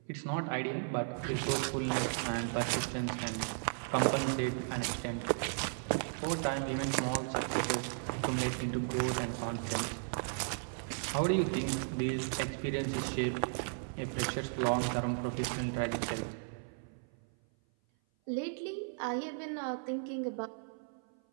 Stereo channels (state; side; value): silent; left; 54 dB below the other